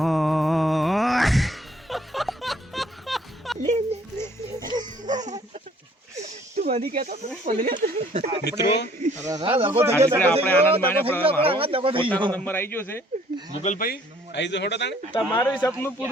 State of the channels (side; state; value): both; normal; correlation 0.60